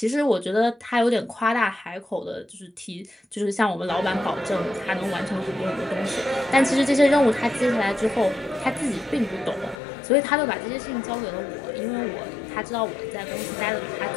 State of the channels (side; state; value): right; drops out; at 9.8 s